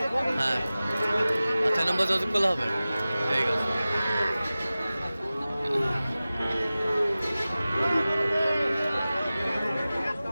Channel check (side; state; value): both; inverted; correlation -0.97